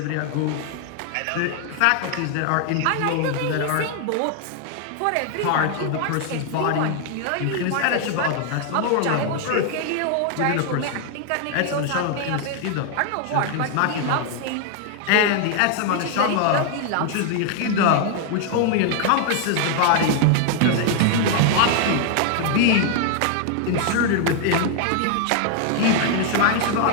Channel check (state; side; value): different; both; correlation 0.00